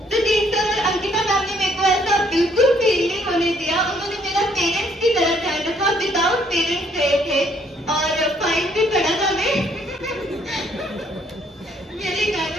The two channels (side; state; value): both; normal; correlation 0.66